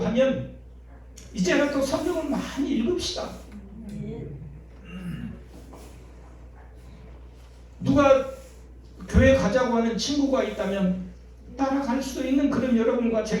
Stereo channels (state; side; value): identical; both; correlation 1.00